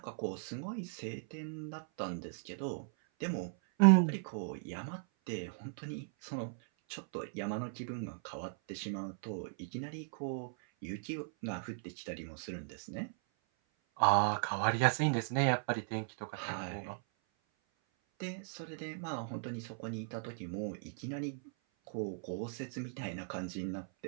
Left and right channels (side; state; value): left; silent; 53 dB below the other